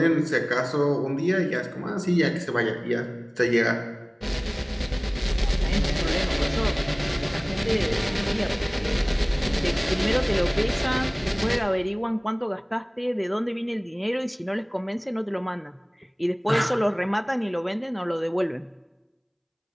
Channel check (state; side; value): identical; both; correlation 1.00